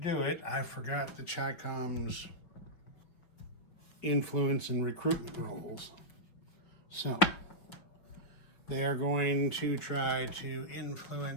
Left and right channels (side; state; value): right; late; 5.6 ms